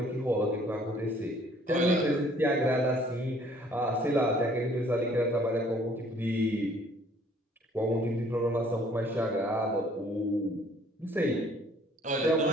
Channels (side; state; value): both; normal; correlation 0.59